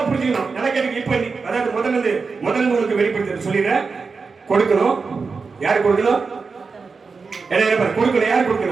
புரிஞ்சுக்கணும். நல்லா கேட்டு இப்ப அதாவது முதல்ல உங்களுக்கு வெளிப்படுத்த சொல்லிடுறேன். கொடுக்கணும். யார் கொடுக்கணும்? என்ன கொடுக்கணும்? யார்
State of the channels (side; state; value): left; quieter; 4.7 dB